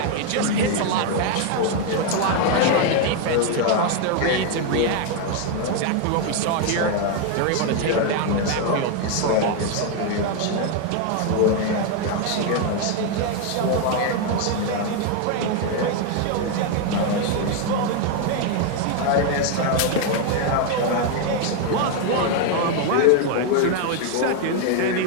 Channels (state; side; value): different; both; correlation 0.01